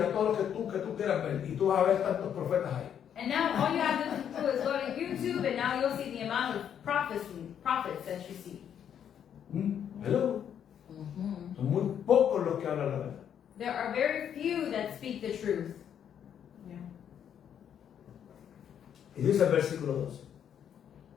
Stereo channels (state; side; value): quieter; right; 8.9 dB